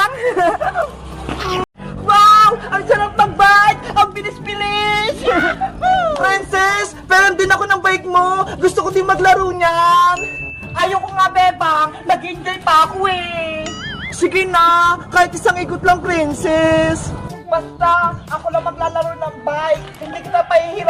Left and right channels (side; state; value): both; identical; correlation 1.00